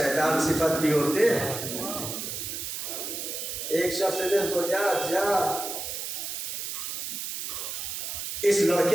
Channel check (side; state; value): right; noise; hiss, 5 dB below the sound